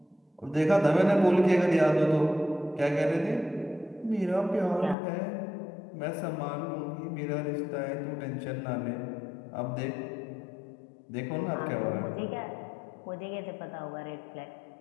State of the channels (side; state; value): right; drops out; at 5.0 s